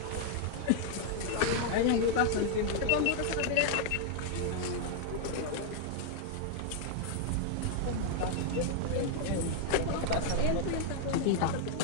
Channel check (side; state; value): both; different; correlation 0.00